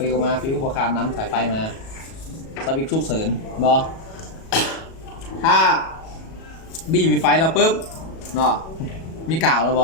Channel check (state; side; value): late; right; 37 ms